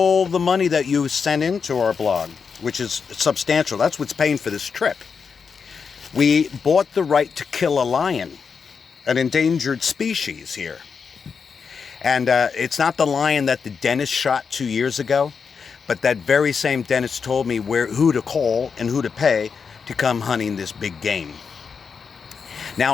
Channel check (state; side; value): quieter; right; 5.8 dB